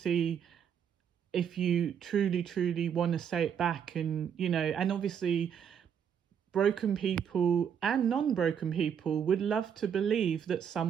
if you truly, truly want to say it back. And obviously broken people and non-broken people would love to believe that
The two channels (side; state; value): left; quieter; 8.1 dB